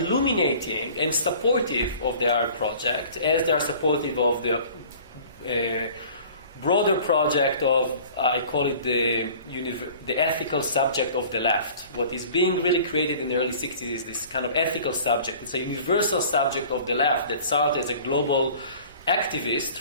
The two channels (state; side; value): inverted; both; correlation -0.46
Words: and supportive of the Arab project, as they are supportive of the broader project of, I call it the ethical subject of the left. What is being really created in the early 60s is this kind of ethical subject. It's a universal subject of the left that Sartre, as a global activist,